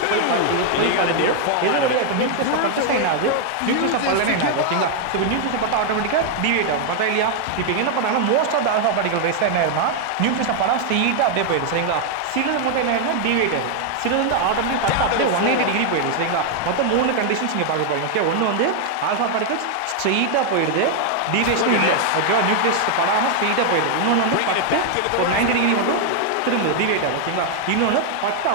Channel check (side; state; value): both; different; correlation 0.00